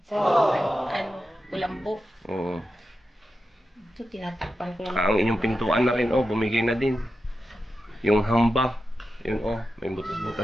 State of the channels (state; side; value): normal; both; correlation 0.90